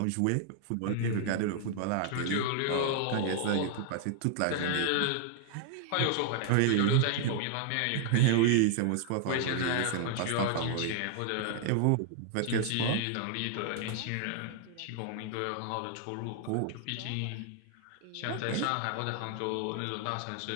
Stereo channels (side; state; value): both; different; correlation 0.00